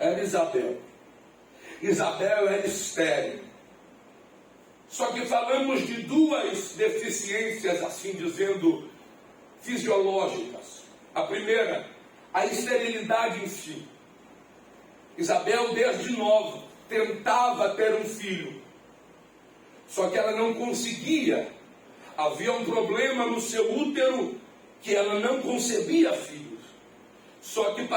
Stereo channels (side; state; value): both; identical; correlation 1.00